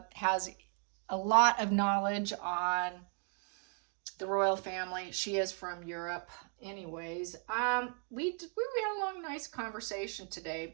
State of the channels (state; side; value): quieter; left; 37.4 dB